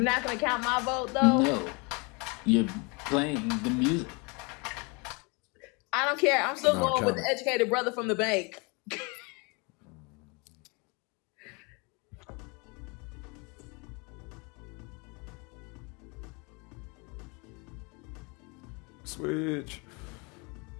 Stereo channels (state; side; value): quieter; right; 30.3 dB